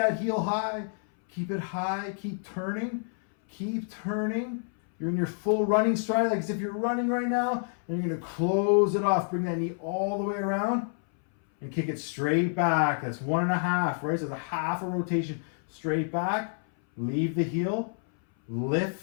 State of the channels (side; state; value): right; silent; 59 dB below the other